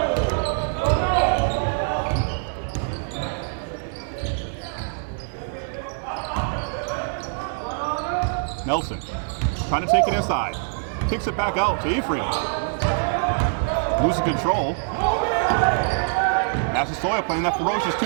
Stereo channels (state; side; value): silent; left; digital silence